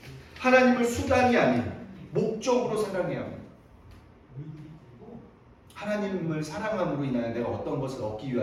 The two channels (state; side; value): identical; both; correlation 1.00